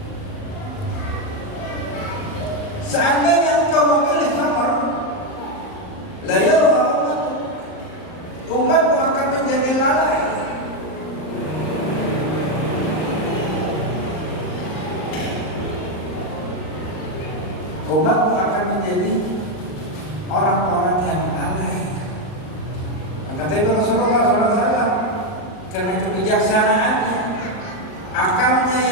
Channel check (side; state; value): right; late; 38 ms